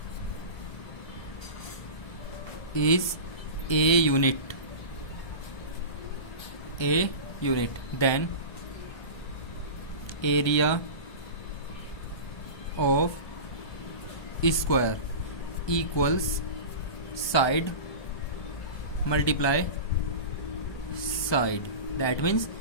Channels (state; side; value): late; right; 1.2 ms